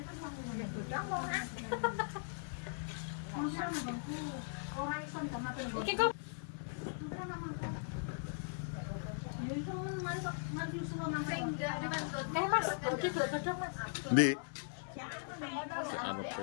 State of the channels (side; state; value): right; silent; 52 dB below the other